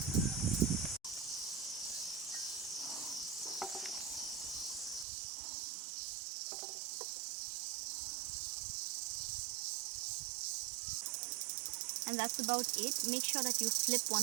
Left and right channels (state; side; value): drops out; left; at 5.1 s